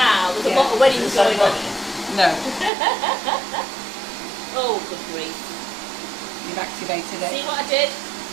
there's a lot of weddings going on. No. Oh, good grief. You've activated it. See what I did?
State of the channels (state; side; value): drops out; left; at 2.7 s